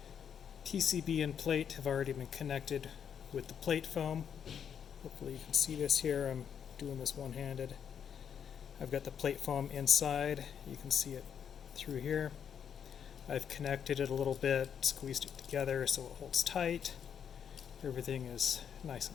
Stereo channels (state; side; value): quieter; right; 8.0 dB